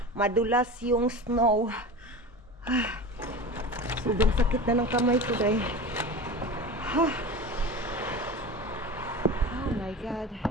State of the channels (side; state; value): both; normal; correlation 0.31